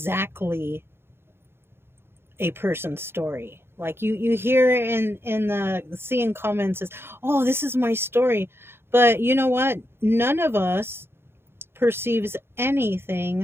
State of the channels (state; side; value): late; left; 0.11 ms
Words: a person's story. Like you hear in the seeing comments is, oh, this is my story. But you know what? None of us perceives